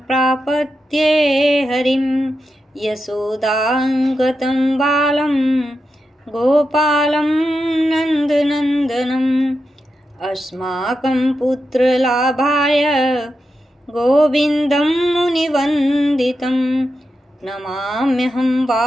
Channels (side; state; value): both; normal; correlation 0.88